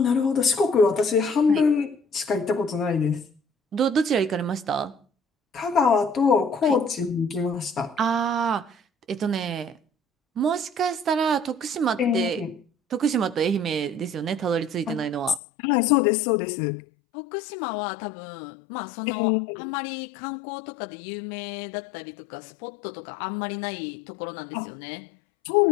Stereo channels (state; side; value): drops out; right; at 15.4 s